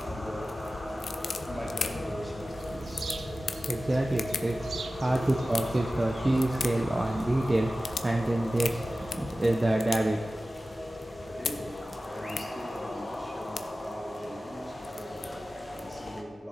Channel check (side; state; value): both; normal; correlation 0.95